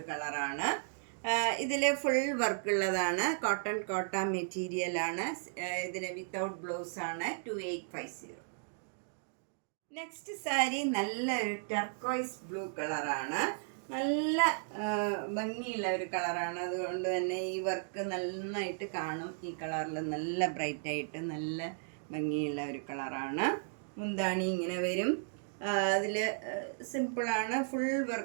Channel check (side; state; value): left; silent; digital silence